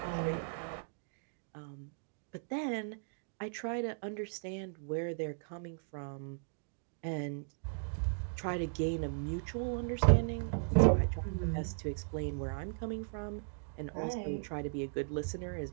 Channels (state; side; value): silent; left; digital silence